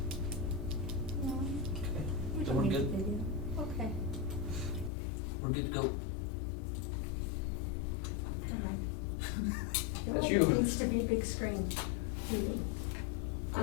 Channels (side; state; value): right; drops out; at 4.9 s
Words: No, Okay. we Then don't we're need good. video. Okay. We're good to go. All right. I feel That's like you. It needs to be a big screen TV.